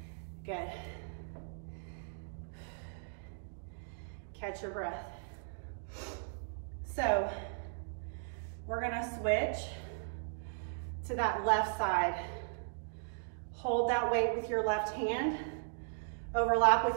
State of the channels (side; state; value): left; silent; digital silence